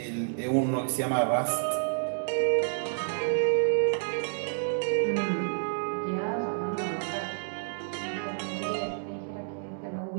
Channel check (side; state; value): left; silent; digital silence